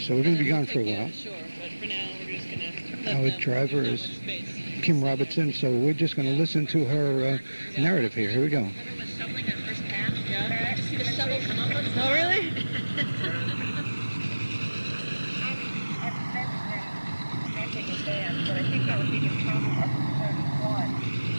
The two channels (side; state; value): both; inverted; correlation -1.00